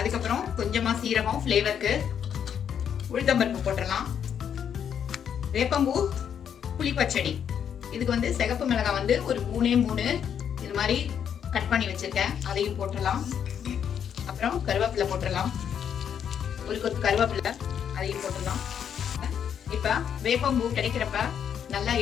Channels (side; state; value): right; quieter; 8.4 dB